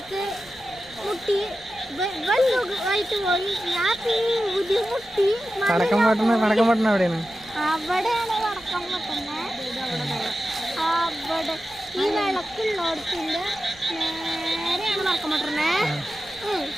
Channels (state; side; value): noise; right; rumble, 25 dB below the sound